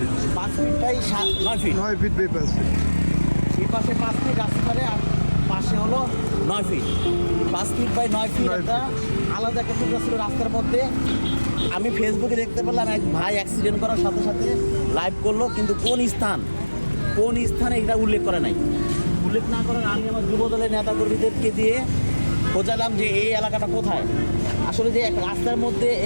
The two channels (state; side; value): inverted; both; correlation -1.00